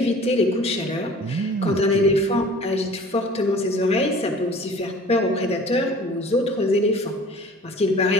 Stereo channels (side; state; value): both; normal; correlation 0.46